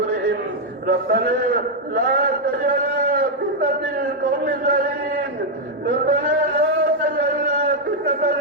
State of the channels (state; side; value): normal; both; correlation -0.01